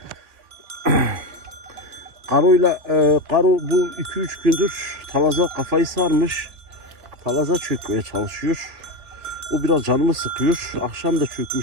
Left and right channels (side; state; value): left; late; 3.2 ms